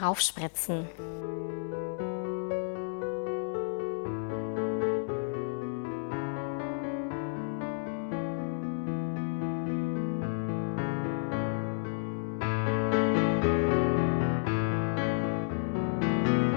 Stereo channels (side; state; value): right; silent; 57 dB below the other